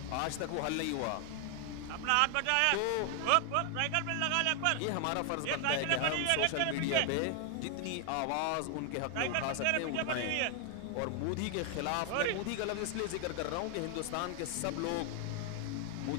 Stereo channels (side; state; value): both; different; correlation 0.00